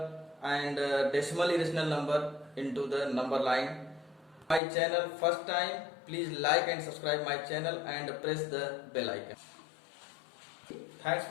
and decimal irrational number into the number line. My channel first time, please like and subscribe my channel and press the bell icon. Thanks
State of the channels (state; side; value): drops out; right; at 4.6 s